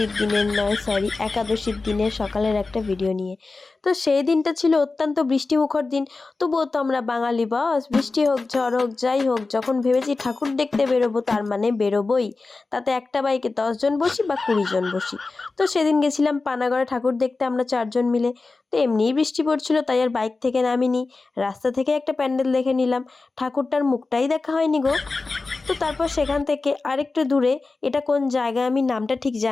দিনের নয়, সরি, একাদশীর দিনের সকালের একটা ভিডিও নিয়ে। তো সেই দিনটা ছিল অত্যন্ত বৃষ্টিমুখর দিন। তবুও তো আমরা বাঙালি বস, বৃষ্টি হোক ঝড় হোক যাই হোক, যখন ভেবেছি ঠাকুর দেখতে বেরোবো তার মানে বেরোবোই। তাতে একটা বাইকে 10 জন বসি বা 20 জন বসি। তো সেদিন গেছিলাম পানাগড়ে ঠাকুর দেখতে আমরা 4 জন মিলে। তো এমনিই বৃষ্টি পড়ছিল, তাই আর বাইক থেকে নামিনি, রাস্তা থেকে একটা প্যান্ডেল দেখে নিলাম। ঠাকুরটার মুখটাই দেখা হয়নি গো। তো তারপর সেখান থেকে আরেকটু দূরে, এটা কোন জায়গা আমি নামটা ঠিক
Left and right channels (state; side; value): quieter; right; 3.7 dB